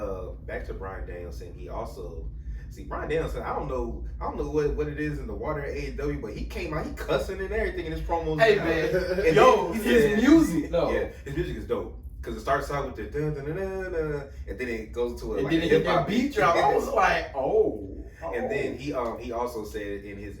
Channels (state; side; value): identical; both; correlation 1.00